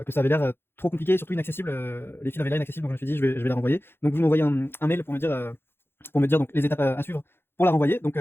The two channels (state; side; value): late; right; 0.11 ms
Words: ça avait l'air trop compliqué, et surtout inaccessible. Les fils avaient l'air inaccessibles, donc je me suis dit je vais la renvoyer. Donc vous m'envoyez un mail pour me dire donc les étapes à suivre pour la renvoyer. Donc